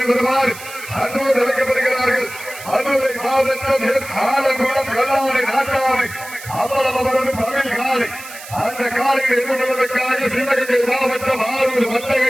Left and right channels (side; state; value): right; noise; hiss, 14 dB below the sound